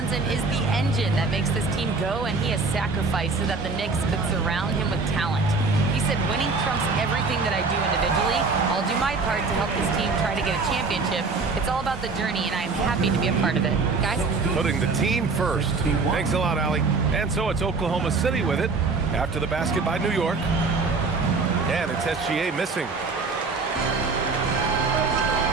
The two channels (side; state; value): left; quieter; 4.1 dB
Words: is the engine that makes this team go, and he has sacrificed so that the Knicks could surround him with talent. He said, winning trumps everything that I do individually. I'll do my part to help this team try to get a championship. It's all about the journey, and I'm happy to be a part of it. Guys? Putting the team first. Thanks a lot, Allie. And so it's Oklahoma City with it after the basket by New York. And it's SGA missing.